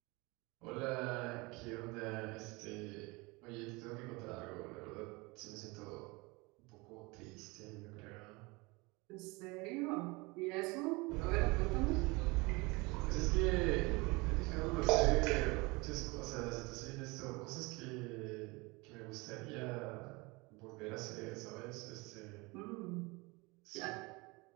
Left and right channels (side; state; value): left; quieter; 25.4 dB